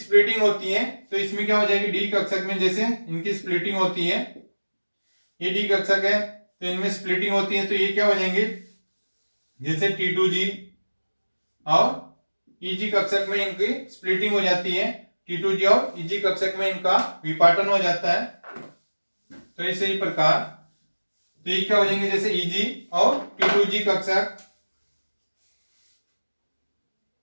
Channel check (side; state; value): both; inverted; correlation -1.00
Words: होती है। तो इसमें क्या हो जाएगी, डी कक्षक में जैसे इनकी स्प्लिटिंग होती है, ये डी कक्षक है तो इनमें स्प्लिटिंग होती है। तो ये क्या हो जाएंगे, जैसे T2G और EG कक्षक में इनकी स्प्लिटिंग हो जाती है। T2G और EG कक्षक में इनका विपाटन हो जाता है। तो इसी प्रकार तो ये क्या हो जाएंगे, जैसे EG और T2G कक्षक।